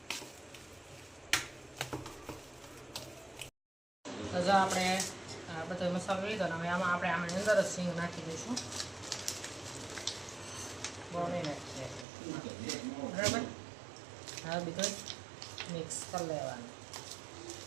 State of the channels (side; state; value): left; drops out; at 12.1 s